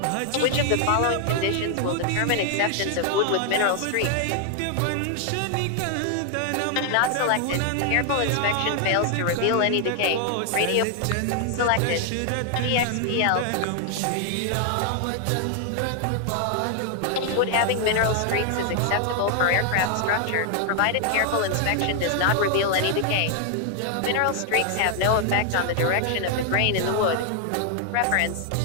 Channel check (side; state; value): both; different; correlation 0.00